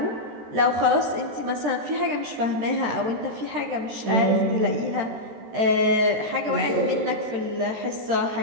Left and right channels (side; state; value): left; late; 13 ms